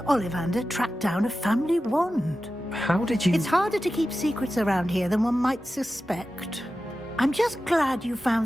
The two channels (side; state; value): both; normal; correlation 0.93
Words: Ollivander track down a family wand. How did you... It's harder to keep secrets around here than one might suspect. I'm just glad you found